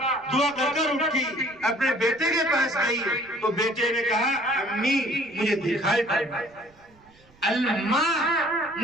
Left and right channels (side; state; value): right; noise; rumble, 29 dB below the sound